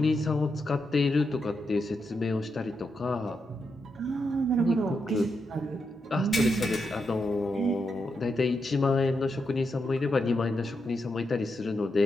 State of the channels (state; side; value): normal; both; correlation 0.84